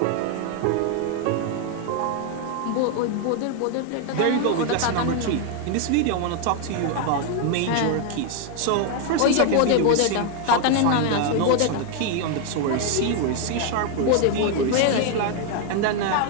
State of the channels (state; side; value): different; both; correlation 0.00